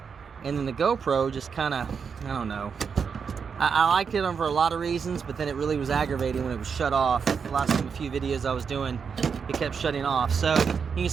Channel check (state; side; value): quieter; left; 6.2 dB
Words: and then the GoPro just kind of, I don't know. I liked it for a lot of reasons, but then it really was aggravating when it was shut off. The last few videos I was doing, it kept shutting off. So you can